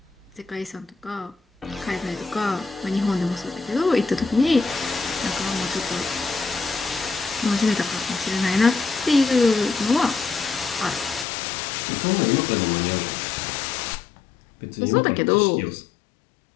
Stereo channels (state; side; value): drops out; right; at 11.2 s